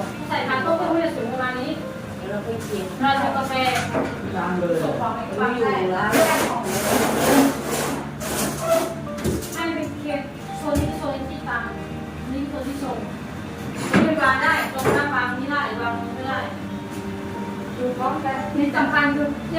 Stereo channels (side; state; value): both; identical; correlation 1.00